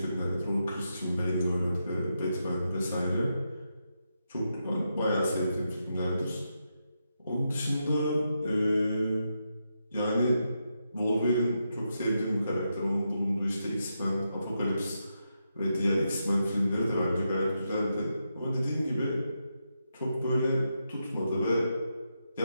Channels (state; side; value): inverted; both; correlation -0.84